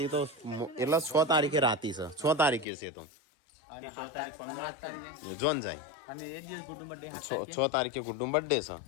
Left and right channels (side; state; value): right; drops out; at 2.7 s